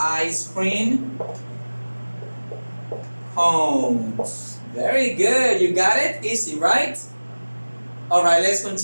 cream cones. Very good, you got it? Easy, right? All right, let's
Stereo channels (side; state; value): both; inverted; correlation -1.00